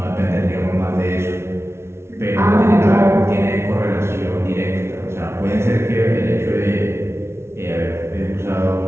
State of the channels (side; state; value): left; late; 0.13 ms